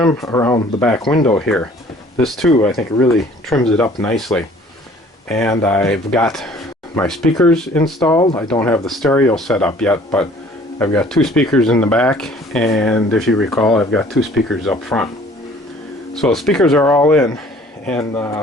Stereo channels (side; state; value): both; normal; correlation 0.54